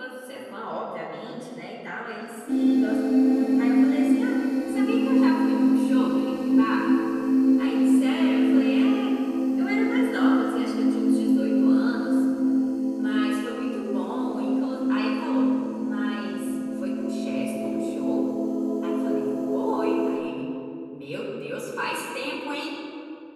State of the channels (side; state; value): both; identical; correlation 1.00